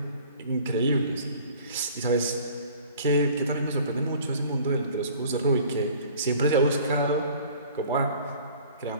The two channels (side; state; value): both; inverted; correlation -0.49